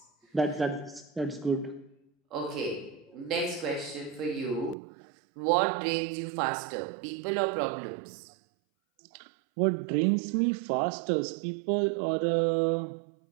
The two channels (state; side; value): drops out; left; at 4.8 s